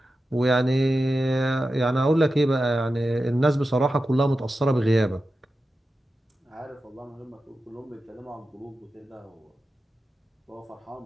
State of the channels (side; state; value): both; normal; correlation 0.92